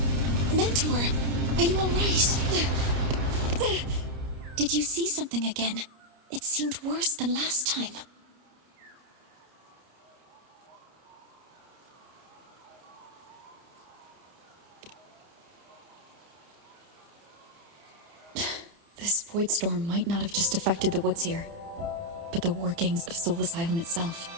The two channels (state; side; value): late; left; 30 ms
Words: Mentor, are you all right? Did you see something again? It seemed worse than last time. This void storm might not have just affected the woods here, but the workings of Soul Asylum itself.